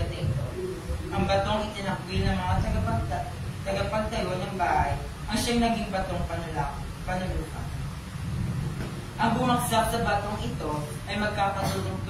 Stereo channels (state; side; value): identical; both; correlation 1.00